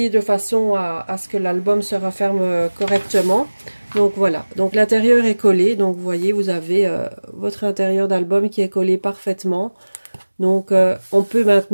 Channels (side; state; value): both; inverted; correlation -1.00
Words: de façon à ce que l'album se referme correctement. Donc voilà, donc l'intérieur est collé. Donc vous voyez, vous avez votre intérieur d'album qui est collé parfaitement. Donc on peut